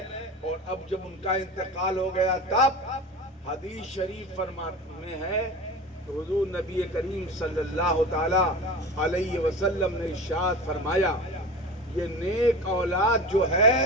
اور اب جب ان کا انتقال ہو گیا تب حدیث شریف میں ہے تو حضور نبی کریم صلی اللہ تعالی علیہ وسلم نے ارشاد فرمایا، یہ نیک اولاد جو ہے،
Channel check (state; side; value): normal; both; correlation 0.32